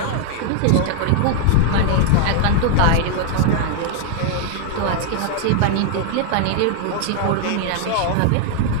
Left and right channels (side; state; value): both; different; correlation 0.00